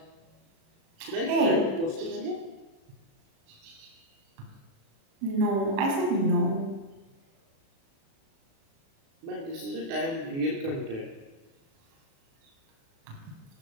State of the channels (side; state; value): left; late; 37 ms